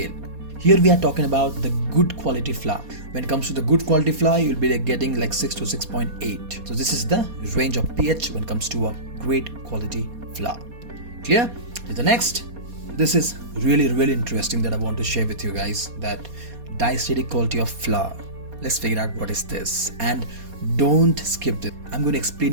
Here we are talking about the good quality flour. When it comes to the good quality flour, you'll be getting like 6 to 6.8. So this is the range of pH when it comes to a great quality flour. Clear? To the next. This is really interesting that I want to share with you guys, that diastatic quality of flour. Let's figure out what is this, and don't skip this. I'm going to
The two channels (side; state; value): left; late; 4.2 ms